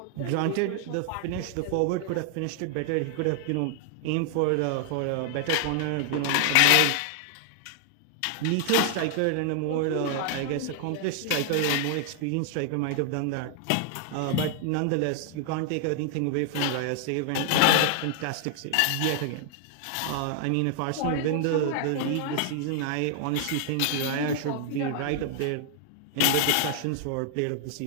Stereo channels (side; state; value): both; different; correlation 0.00